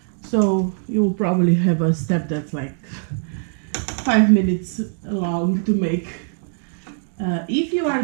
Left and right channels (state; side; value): silent; left; digital silence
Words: So you will probably have a step that's like 5 minutes long to make. If you are